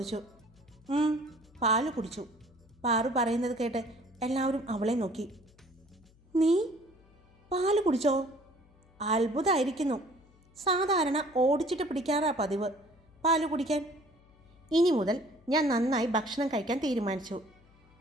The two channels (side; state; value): left; noise; hum, 28 dB below the sound